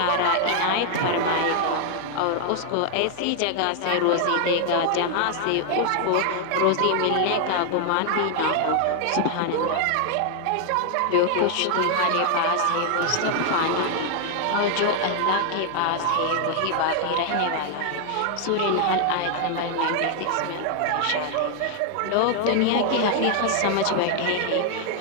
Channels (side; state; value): both; different; correlation 0.00